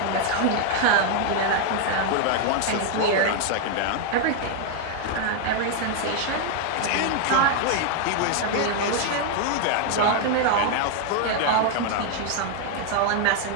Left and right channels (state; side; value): different; both; correlation 0.00